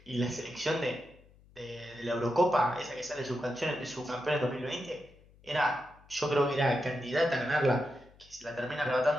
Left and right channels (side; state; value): left; noise; hum, 27 dB below the sound